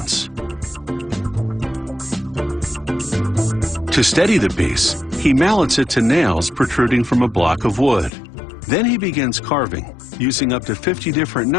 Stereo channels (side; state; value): right; drops out; at 8.1 s